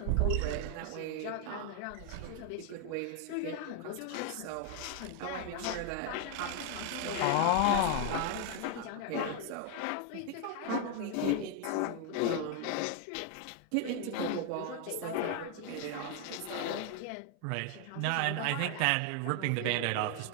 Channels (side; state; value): both; different; correlation 0.01